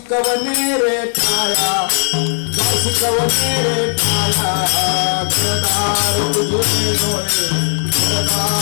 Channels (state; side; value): silent; right; digital silence